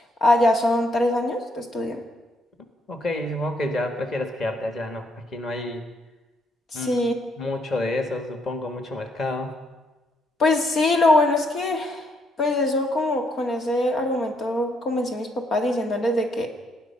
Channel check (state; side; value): normal; both; correlation 0.73